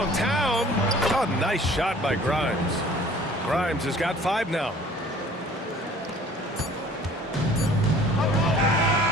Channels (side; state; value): both; normal; correlation 0.51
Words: A nice shot by Grimes. Grimes has got 5 now.